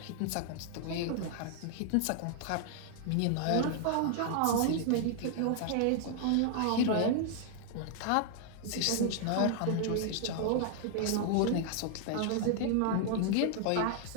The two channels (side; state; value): both; different; correlation 0.00